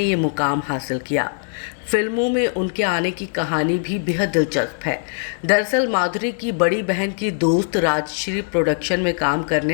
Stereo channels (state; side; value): silent; right; digital silence